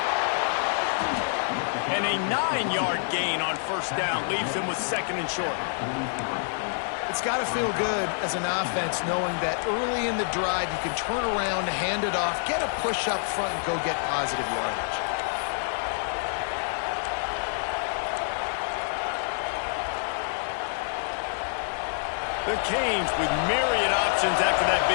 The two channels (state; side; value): silent; right; digital silence